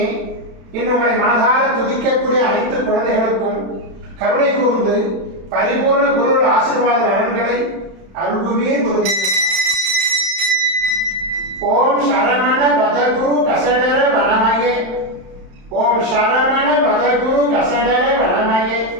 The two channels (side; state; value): left; late; 31 ms